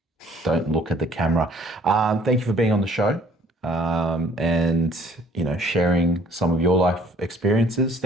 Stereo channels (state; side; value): normal; both; correlation 0.56